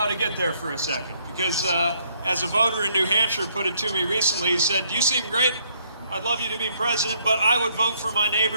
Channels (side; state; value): both; inverted; correlation -0.69